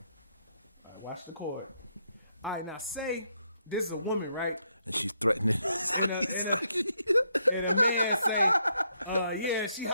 Watch the cord. All right, now say this is a woman, right? And she's threatening And sucky sucky. and a man say, yeah, she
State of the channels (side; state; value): both; inverted; correlation -0.77